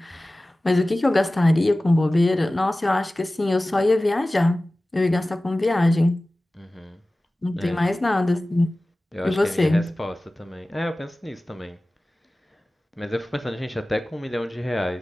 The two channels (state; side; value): normal; both; correlation 0.97